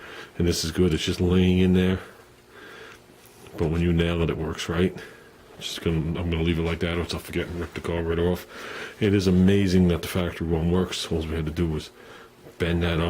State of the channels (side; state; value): both; identical; correlation 1.00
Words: And this is good, it's just laying in there. But when you nail it, it works right. I'm gonna leave it like that, or else I'll forget and rip the carburetor off. It is amazing that the factory one works. All we had to do was bend that